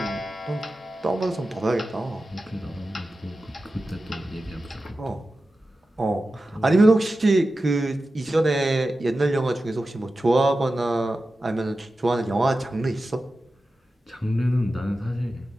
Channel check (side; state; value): both; normal; correlation 0.93